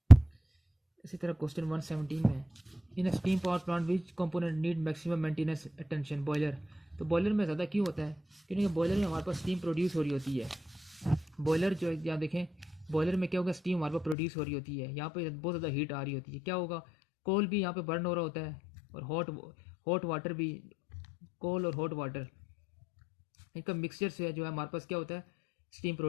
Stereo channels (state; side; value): drops out; right; at 14.2 s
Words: इसी तरह क्वेश्चन 117 में in steam power plant which component need maximum maintenance attention. Boiler. तो बॉयलर में ज़्यादा क्यों होता है, क्योंकि बॉयलर में हमारे पास स्टीम प्रोड्यूस हो रही होती है। बॉयलर जो यहाँ देखें, बॉयलर में क्या होगा, स्टीम हमारे पास प्रोड्यूस हो रही होती है, यहाँ पे बहुत ज़्यादा हीट आ रही होती है। क्या होगा, कोल भी यहाँ पे बर्न हो रहा होता है, और हॉट वाटर भी, कोल और हॉट वाटर इनका मिक्सचर से जो है हमारे पास क्या होता है, स्टीम